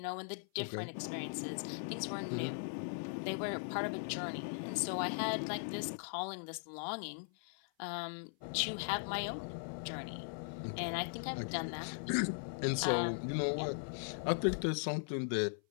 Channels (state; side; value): silent; right; 52 dB below the other